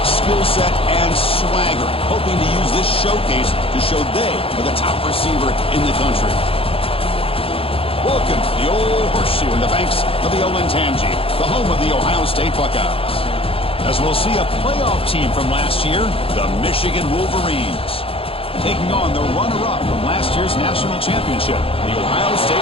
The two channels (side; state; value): right; late; 0.27 ms